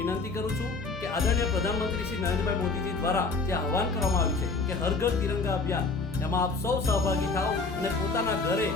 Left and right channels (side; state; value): right; quieter; 4.0 dB